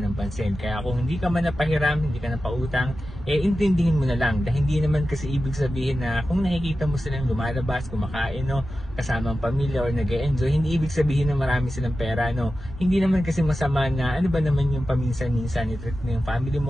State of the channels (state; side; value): normal; both; correlation 0.93